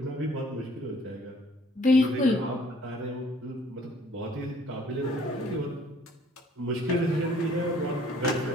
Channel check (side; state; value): both; normal; correlation 0.57